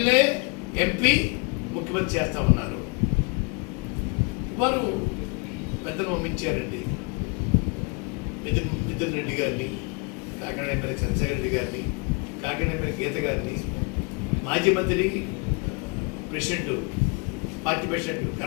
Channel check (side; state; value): right; quieter; 33.2 dB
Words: ఎంపీ, ముఖ్యమంత్రి చేస్తా ఉన్నారు. వారు పెద్దలు పంపించారండి. మిథున్ రెడ్డి గారిని, కాకినాడ ఎమ్మెల్యే చంద్రశేఖర రెడ్డి గారిని, కాకినాడ ఎమ్మెల్యే గీత గారిని, మాజీ మంత్రి ప్రెసిడెంట్, పార్టీ ప్రెసిడెంట్